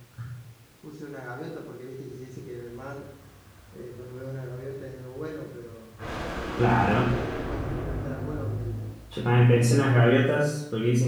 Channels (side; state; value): both; identical; correlation 1.00